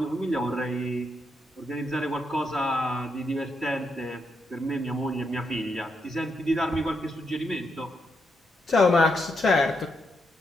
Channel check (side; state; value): both; normal; correlation 0.80